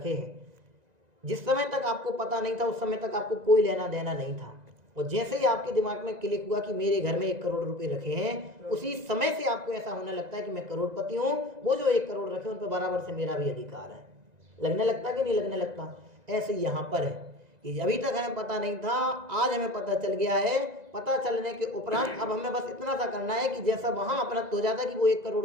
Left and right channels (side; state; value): left; late; 1.9 ms